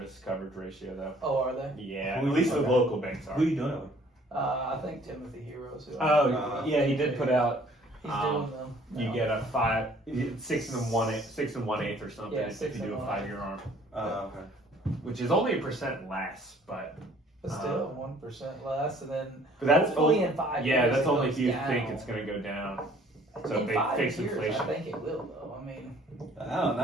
coverage ratio, though. Oh, are they? Yeah, Who at least the okay. local banks are. who are you doing it with? I think Timothy Heroes. Who Oh, yeah, he did put out. He's um, doing them. You now. get a 6 1/8 or something Yeah, if 6 you do a 1/8. 5-year arm, Okay. which is only 1% less, but But still 1% less, and then that's hopefully only, in 5 yeah, years that's it only goes if you down. think it's going to go down. So in if they 5 fix years, inflation. I think it will, though. I mean, I don't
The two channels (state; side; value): normal; both; correlation 0.57